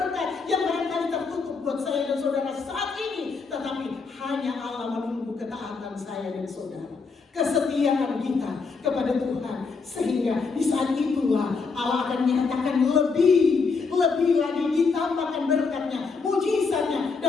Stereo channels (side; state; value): right; quieter; 4.7 dB